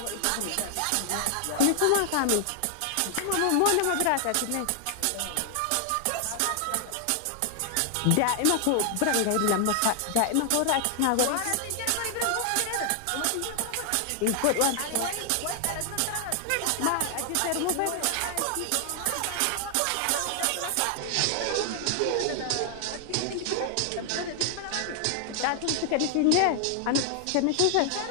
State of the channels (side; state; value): both; different; correlation 0.00